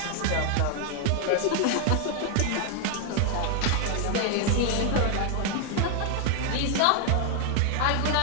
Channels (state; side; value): different; both; correlation 0.00